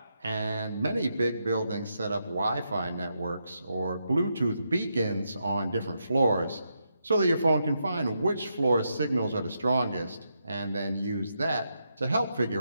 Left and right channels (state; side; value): inverted; both; correlation -0.82